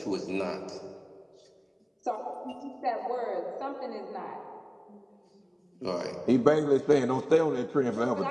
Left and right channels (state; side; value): identical; both; correlation 1.00